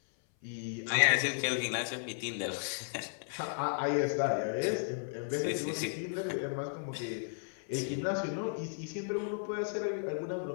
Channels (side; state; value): right; silent; 55 dB below the other